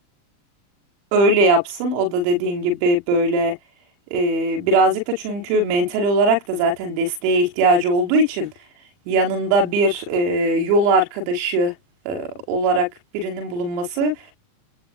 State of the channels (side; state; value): left; late; 39 ms